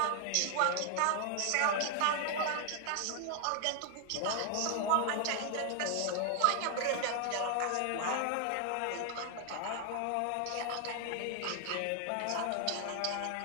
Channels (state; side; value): different; both; correlation 0.00